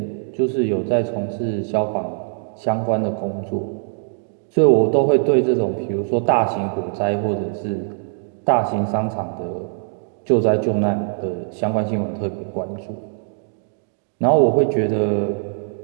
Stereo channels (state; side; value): silent; left; digital silence